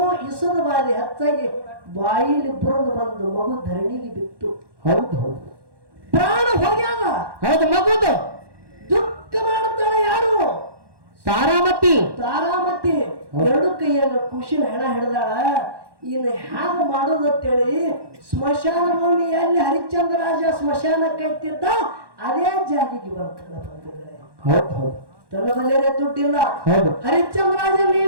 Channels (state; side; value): late; left; 1.1 ms